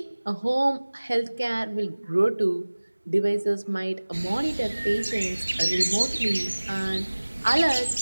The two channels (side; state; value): both; inverted; correlation -1.00